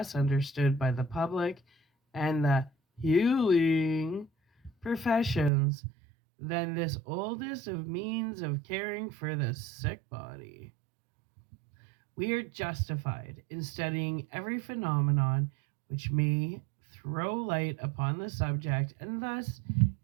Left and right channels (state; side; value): drops out; left; at 5.5 s